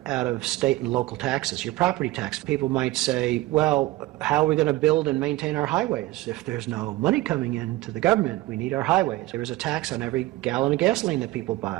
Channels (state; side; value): quieter; left; 18.0 dB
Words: out of state and local taxes, your property tax. People might say, well, how are we going to build and maintain our highways? If there's no money coming into the government, we need our highways. There is a tax on every gallon of gasoline that people